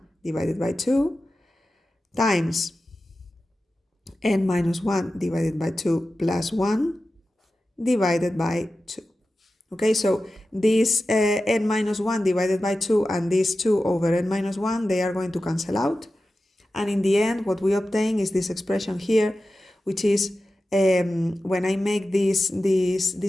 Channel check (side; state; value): both; normal; correlation 0.93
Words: divided by 2 times n minus 1 divided by 2 plus 1 divided by 2. Okay, so this n minus 1 divided by 2 and this 2 over n minus 1, they are going to cancel out. And in the end, what we obtain is this expression here, which is when I make this